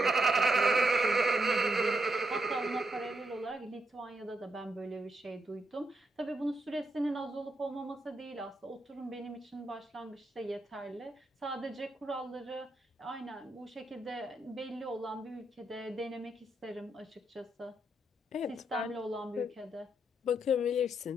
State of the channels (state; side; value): normal; both; correlation 0.79